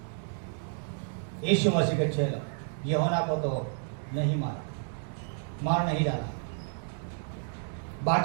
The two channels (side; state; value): left; silent; digital silence